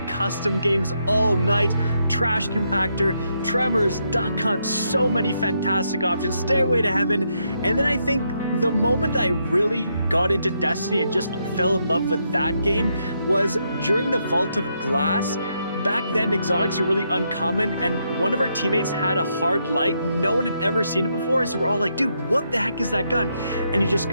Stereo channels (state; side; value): inverted; both; correlation -0.78